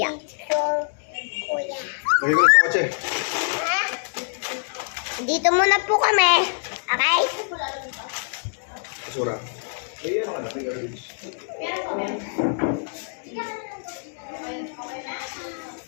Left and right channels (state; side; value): silent; right; digital silence